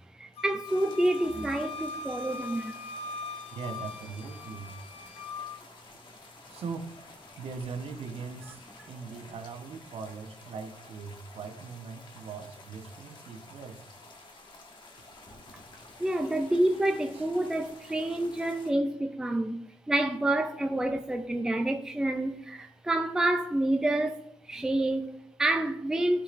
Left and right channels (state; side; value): normal; both; correlation 0.88